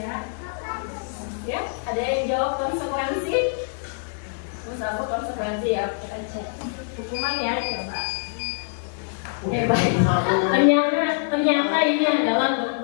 Ya, ada yang jawab konsekuensi? Misalnya konsekuensi ya, kita cek. Hukuman ya, coba. Baik. Ternyata ini adalah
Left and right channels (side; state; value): right; silent; digital silence